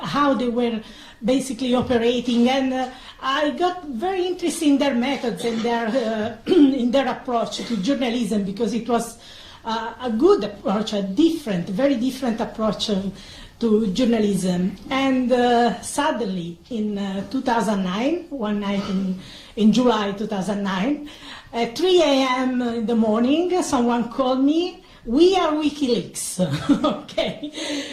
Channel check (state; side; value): identical; both; correlation 1.00